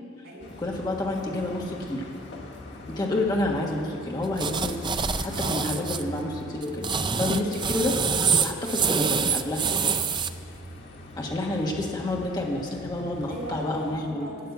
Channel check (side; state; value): both; normal; correlation 0.50